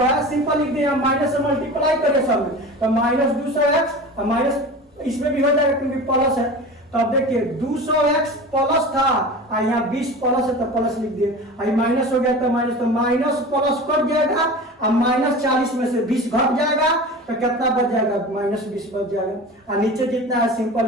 है सिंपल लिख दिया माइनस से मल्टीप्लाई करें सब में तो माइनस 200x माइनस इसमें भी हो जाएगा क्योंकि प्लस है तो अब देखिए 200x प्लस था और यहाँ 20 प्लस है तो प्लस लिख दिए और माइनस हो गया तो माइनस प्लस कट जाएगा और माइनस 40 में से 20 घट जाएगा तो कितना बच जाएगा माइनस 20 बच जाएगा और नीचे जितना है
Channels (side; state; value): both; normal; correlation 0.34